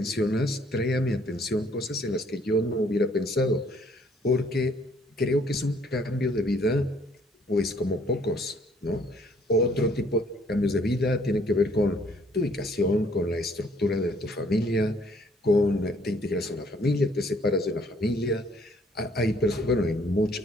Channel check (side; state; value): both; normal; correlation 0.62